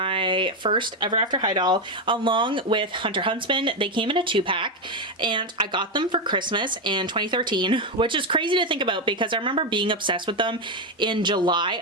first Ever After High doll along with Hunter Huntsman. They came in a 2-pack, and I got them for Christmas in 2013, which is crazy to think about because I remember being obsessed with them in July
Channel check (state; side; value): normal; both; correlation 0.08